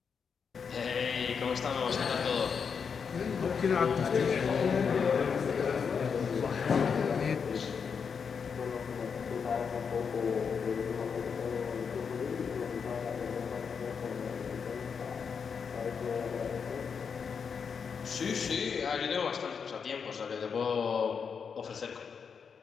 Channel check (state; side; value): quieter; right; 6.3 dB